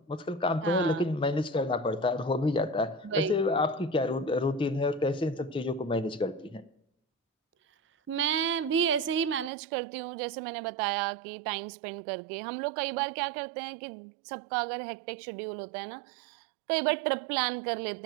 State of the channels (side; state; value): left; drops out; at 9.5 s